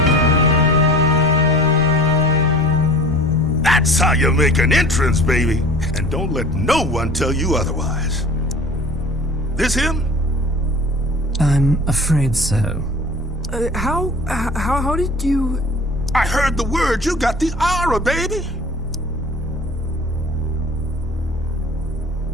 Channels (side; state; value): both; normal; correlation 0.42